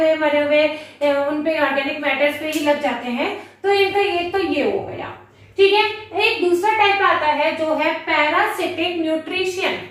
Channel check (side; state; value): both; identical; correlation 1.00